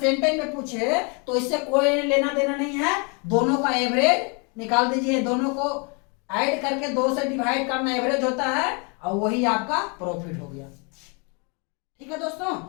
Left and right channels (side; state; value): right; quieter; 33.8 dB